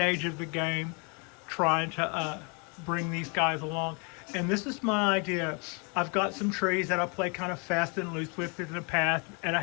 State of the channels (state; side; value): quieter; right; 34.2 dB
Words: of the game, trying to bring these guys along. And this is my idea. I've got some trees that I play kind of fast and loose with in the past, and I